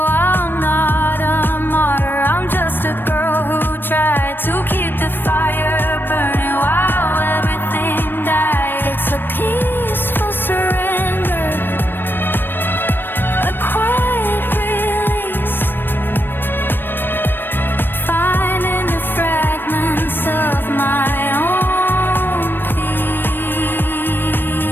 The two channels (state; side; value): late; right; 0.096 ms